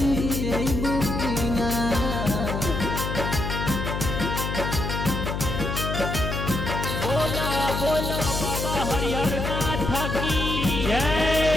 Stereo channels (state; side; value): noise; left; hum, 3 dB below the sound